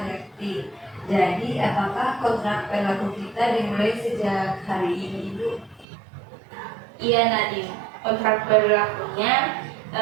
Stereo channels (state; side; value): drops out; left; at 5.9 s